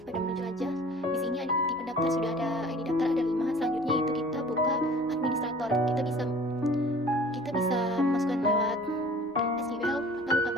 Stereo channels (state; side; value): normal; both; correlation 0.47